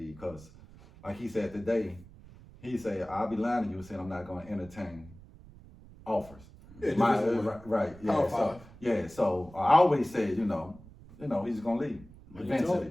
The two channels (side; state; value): right; noise; rumble, 20 dB below the sound